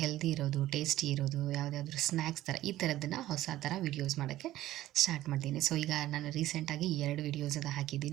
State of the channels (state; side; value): quieter; left; 14.8 dB